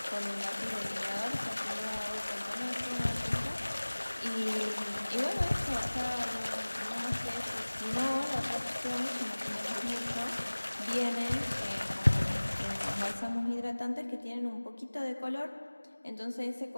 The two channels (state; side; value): inverted; both; correlation -1.00